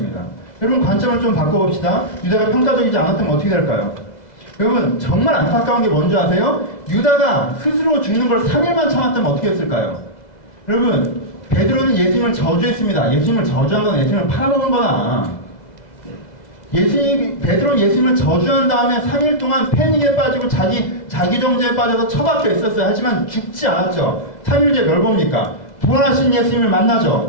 여러분 관점을 좀 바꿔봅시다. 유다가 평가적이지 않았다면 어떻게 될까요? 여러분 정말 안타까운 게 뭔지 아세요? 유다가 스스로 죽는 걸 3일만 참았다면 어떻게 했을까요? 여러분 베드로는 예수님을 저주했습니다. 예수님을 저주한 건 예수님을 팔아먹은 거나, 베드로는 예수님을 저주한 다음에 3일 동안 패닉에 빠지고 자기 정죄에 빠져서 처박혀 있었어요. 하지만 죽지 않았죠. 3일 뒤에 뭘 봅니까? 부활하신 예수님을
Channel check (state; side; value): late; right; 2.0 ms